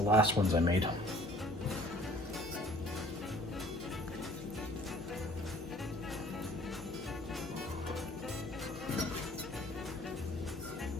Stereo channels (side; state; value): both; normal; correlation 0.53